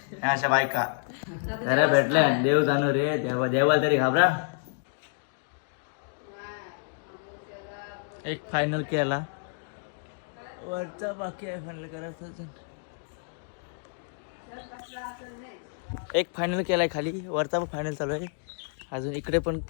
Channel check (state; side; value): silent; right; digital silence